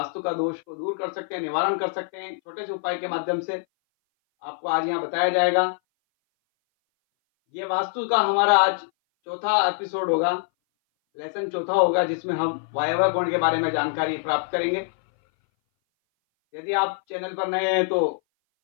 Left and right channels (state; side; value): silent; right; 59 dB below the other